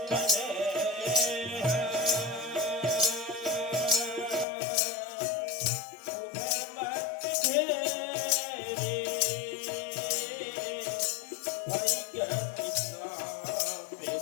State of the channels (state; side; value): drops out; right; at 4.5 s